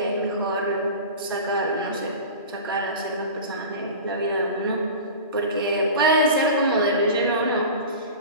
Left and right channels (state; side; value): inverted; both; correlation -0.33